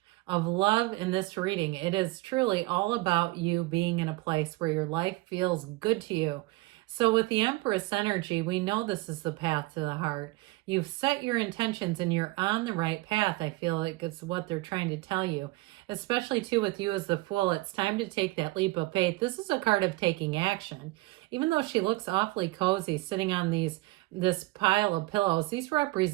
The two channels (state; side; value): quieter; left; 21.0 dB